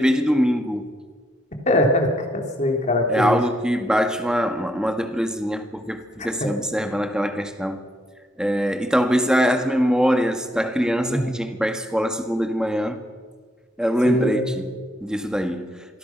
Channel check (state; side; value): normal; both; correlation 0.75